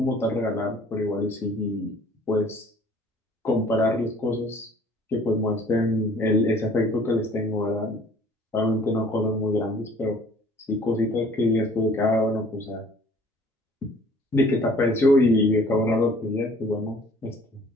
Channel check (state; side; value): normal; both; correlation 0.54